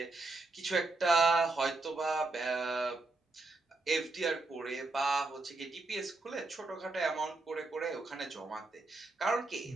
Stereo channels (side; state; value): left; quieter; 3.3 dB